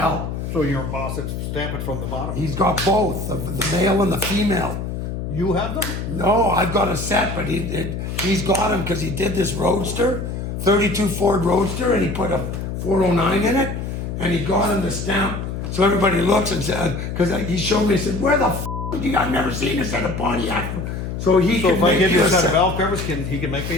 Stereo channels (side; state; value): left; noise; hum, 5 dB below the sound